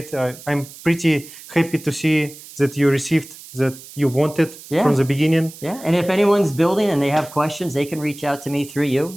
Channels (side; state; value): right; noise; hiss, 17 dB below the sound